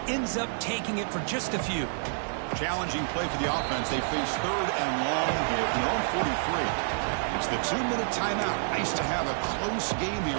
ends up taking it for just a few. Challenging play for the offense. They face third and long here from their own 43. It's the 2-minute timeout. Nice to have a close game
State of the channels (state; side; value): silent; left; digital silence